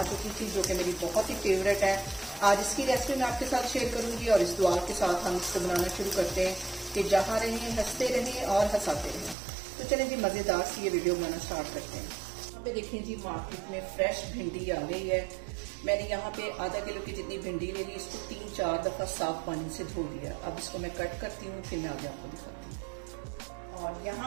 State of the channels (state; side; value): drops out; left; at 9.3 s